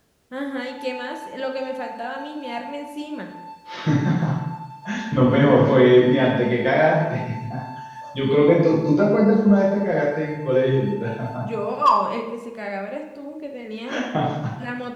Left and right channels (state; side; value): identical; both; correlation 1.00